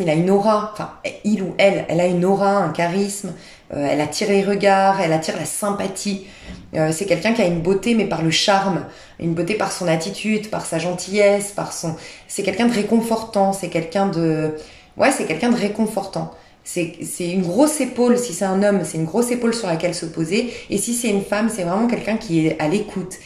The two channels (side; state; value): both; identical; correlation 1.00